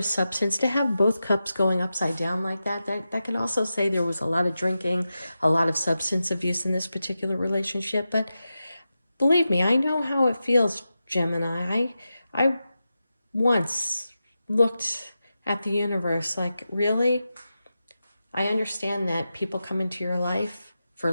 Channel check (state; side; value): inverted; both; correlation -0.91